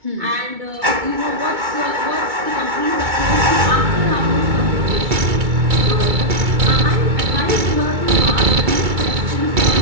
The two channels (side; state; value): left; late; 2.2 ms